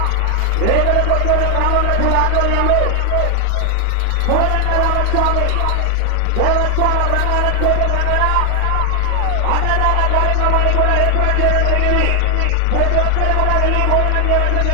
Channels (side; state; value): both; different; correlation 0.00